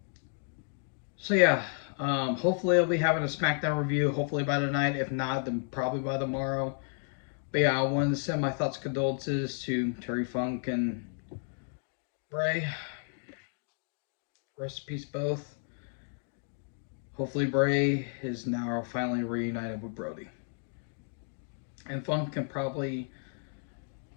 So yeah, hopefully I'll be having a SmackDown review. Hopefully by tonight. If not, then probably by tomorrow. But yeah, I wanted to send my thoughts, condolences to Terry Funk and Bray. Rest in peace, both. Hopefully Bray is now finally reunited with Brody. And Funk can probably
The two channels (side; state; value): right; silent; 56 dB below the other